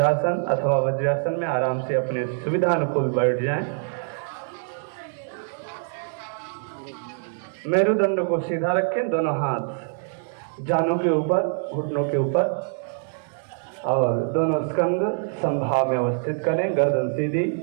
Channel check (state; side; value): silent; left; digital silence